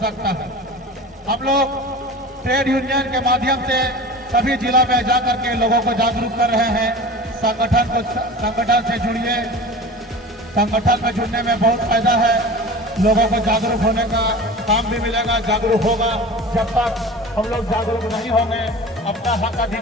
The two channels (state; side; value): normal; both; correlation 0.35